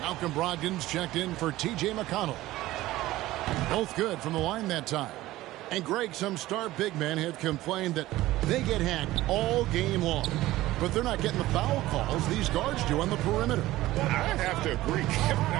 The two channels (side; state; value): left; quieter; 16.7 dB